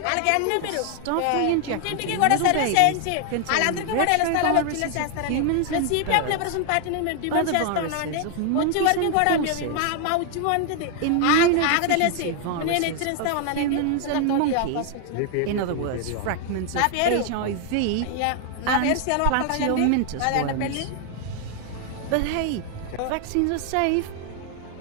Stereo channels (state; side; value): different; both; correlation 0.00